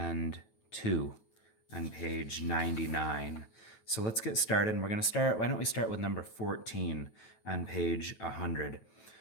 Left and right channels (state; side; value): late; right; 9.2 ms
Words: 2 on page 99. So let's get started. And we're going to start, why don't we start with number 14 on page 100.